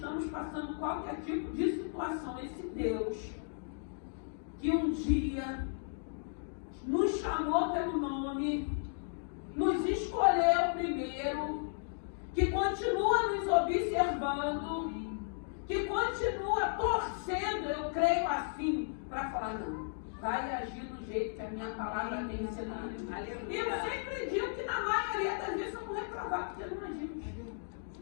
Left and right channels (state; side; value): silent; right; digital silence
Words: passando qualquer tipo de situação, esse Deus que um dia nos chamou pelo nome, nos escolheu primeiro, que continua nos observando, que continua torcendo, eu creio assim, para falar, não, vai agir do jeito que a minha palavra tem ensinado. E eu sempre digo que na maioria das vezes eu vou reprovar, porque não agimos.